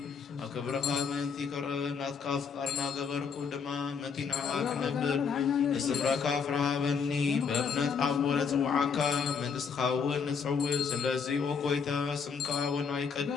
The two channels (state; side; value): quieter; right; 6.0 dB